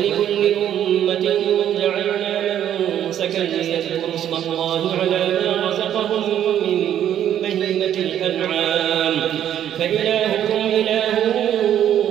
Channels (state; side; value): quieter; left; 10.5 dB